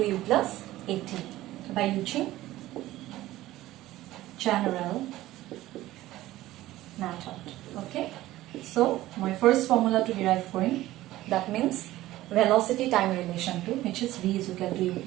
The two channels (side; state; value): left; quieter; 16.0 dB